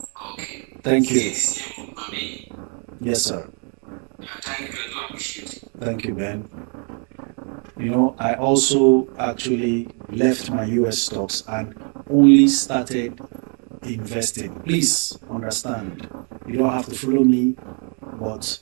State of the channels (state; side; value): quieter; left; 39.8 dB